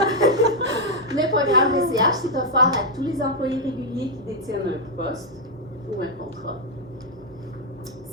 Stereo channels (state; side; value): normal; both; correlation -0.01